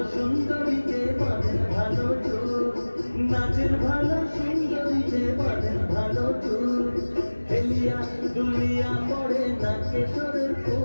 সুন্দরীকে বাঁধেন ভালো চুল, নাচেন ভালো সুন্দরীকে বাঁধেন ভালো চুল। হেলিয়া দুলিয়া পড়ে না কেশরের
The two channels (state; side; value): inverted; both; correlation -1.00